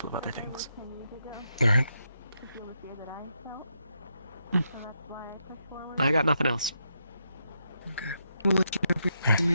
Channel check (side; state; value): both; inverted; correlation -0.81